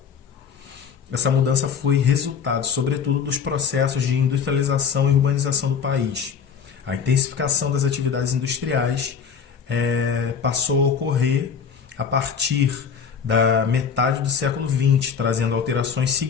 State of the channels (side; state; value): right; quieter; 6.8 dB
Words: Essa mudança foi resultado, sobretudo, dos processos de industrialização e urbanização do país. A intensificação das atividades industriais passou a ocorrer a partir da metade do século XX, trazendo alterações